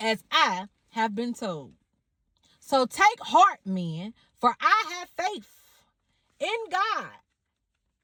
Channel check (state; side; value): identical; both; correlation 1.00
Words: I have been told. So take heart, men, for I have faith in God